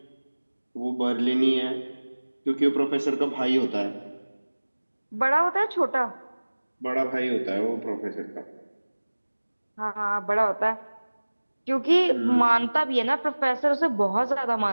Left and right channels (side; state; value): both; inverted; correlation -1.00